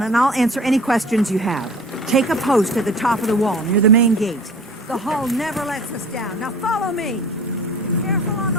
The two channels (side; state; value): both; normal; correlation 0.43